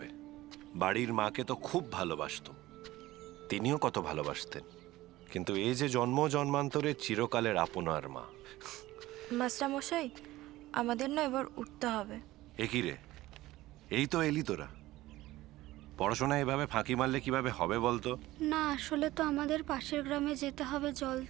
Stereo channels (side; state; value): left; quieter; 17.1 dB